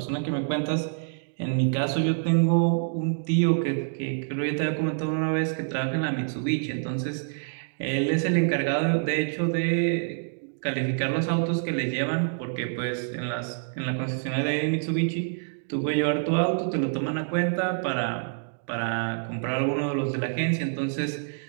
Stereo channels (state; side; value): silent; left; digital silence